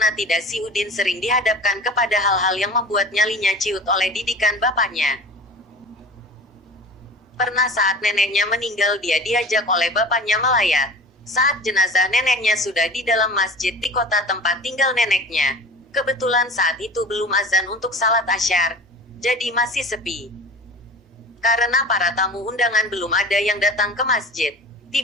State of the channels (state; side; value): normal; both; correlation 0.39